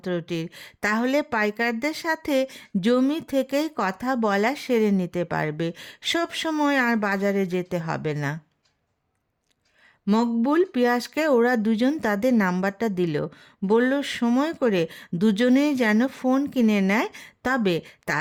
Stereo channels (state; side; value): identical; both; correlation 1.00